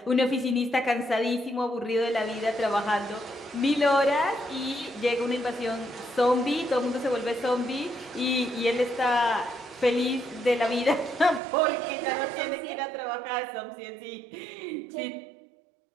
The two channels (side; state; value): left; drops out; at 11.4 s